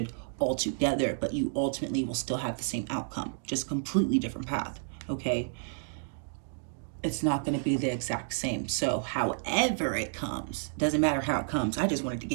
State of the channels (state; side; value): silent; left; digital silence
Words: altogether, but you ultimately will still have the same outcome, just completely different path, okay? It's not going to be the exact same. So however it comes, doesn't matter how it comes, I just wanted to